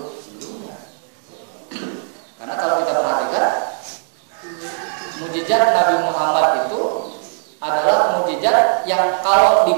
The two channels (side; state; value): left; silent; 67 dB below the other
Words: sebelumnya. Karena kalau kita perhatikan, mukjizat Nabi Muhammad itu adalah mukjizat yang kalau